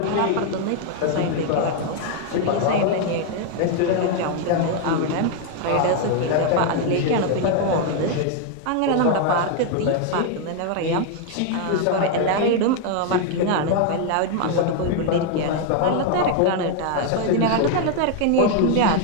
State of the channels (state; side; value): different; both; correlation 0.01